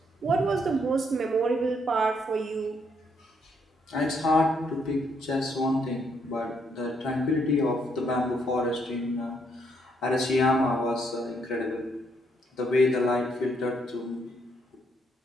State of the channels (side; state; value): both; normal; correlation 0.73